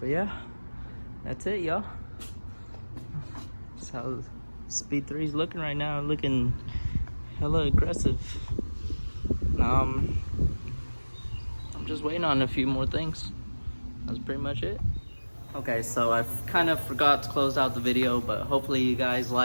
yeah, that's it, y'all. That's how Speed 3 is looking right now. Looking hella aggressive. I'm just waiting on a few more things. That's pretty much it. Okay, so I kind of forgot to close out the video, but hopefully you guys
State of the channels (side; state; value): both; inverted; correlation -1.00